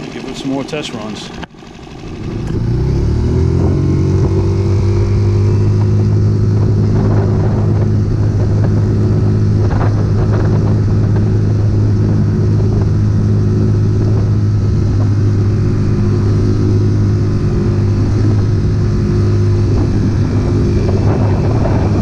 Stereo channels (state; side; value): identical; both; correlation 1.00